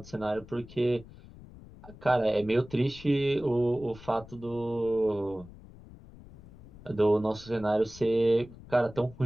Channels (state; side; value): noise; left; rumble, 19 dB below the sound